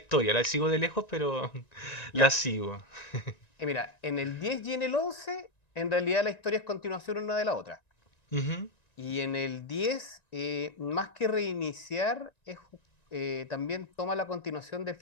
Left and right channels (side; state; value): right; late; 1.9 ms